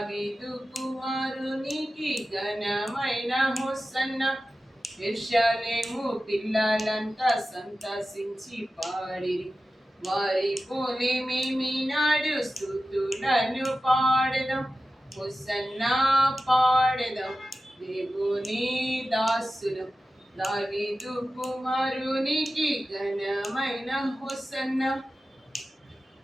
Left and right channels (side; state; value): both; normal; correlation 0.94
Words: కుమారునికి ఘనమైన హోసన్నా. యెరూషలేము పిల్లలంతా సంతసించి పాడిరి, వారి పోలే మేమినాడు స్తుతులను పాడెదం. హోసన్నా పాడెదం దేవుని దాసులం, దావీదు కుమారునికి ఘనమైన హోసన్నా.